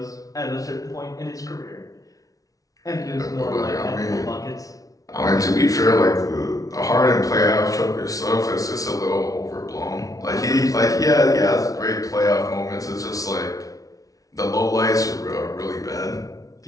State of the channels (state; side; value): late; right; 0.18 ms